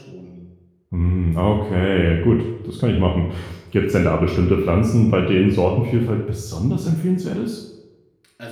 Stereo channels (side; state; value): both; identical; correlation 1.00